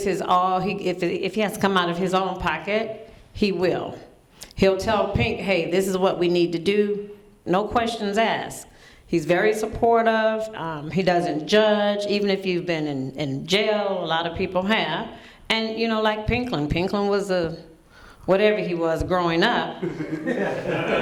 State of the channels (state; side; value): identical; both; correlation 1.00